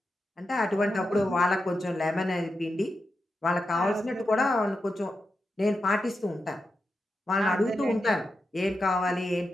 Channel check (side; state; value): both; normal; correlation 0.88